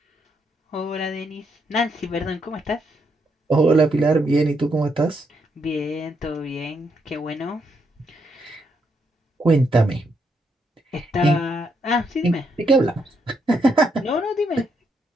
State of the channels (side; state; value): both; normal; correlation 0.77